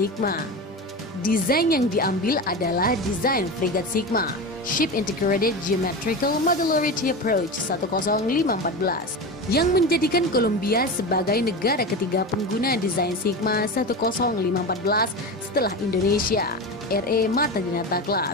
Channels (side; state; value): both; normal; correlation 0.24